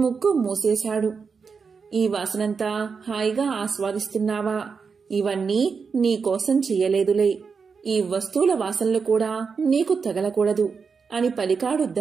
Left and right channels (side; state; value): left; quieter; 5.5 dB